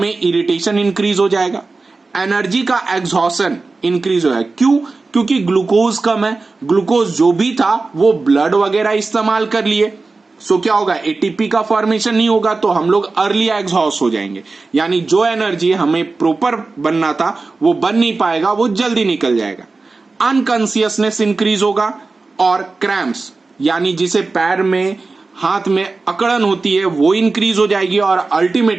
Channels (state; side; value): quieter; left; 3.8 dB